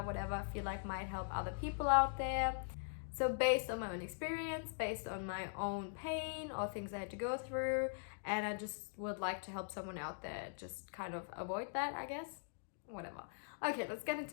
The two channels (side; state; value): right; silent; digital silence